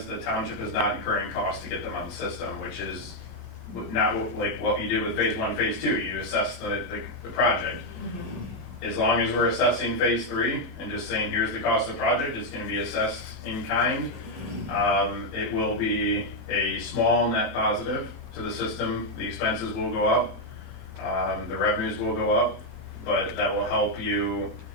the township is not incurring costs to get them on the system, which is not like what you did with phase 1, phase 2. You assess the project. As long as we're assessing phase 3 and just saying here's the cost of the project, it's going to be assessed in kind. It will be a small net positive to the system. The expenses will go up, the revenues will go up, but that will help you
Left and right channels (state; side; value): late; left; 4.0 ms